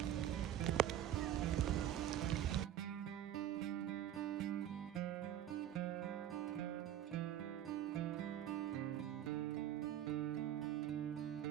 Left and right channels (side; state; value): left; quieter; 11.2 dB